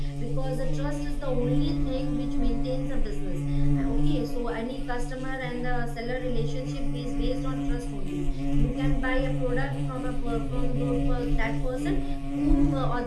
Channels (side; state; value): both; identical; correlation 1.00